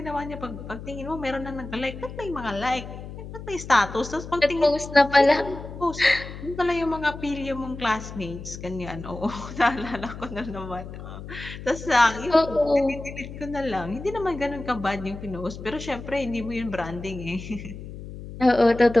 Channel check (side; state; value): left; noise; hum, 11 dB below the sound